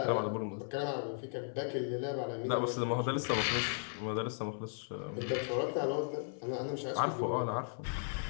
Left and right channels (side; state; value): right; silent; 54 dB below the other